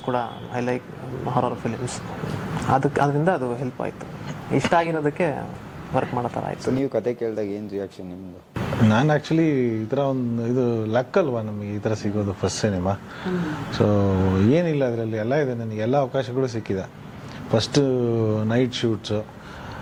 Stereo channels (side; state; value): both; identical; correlation 1.00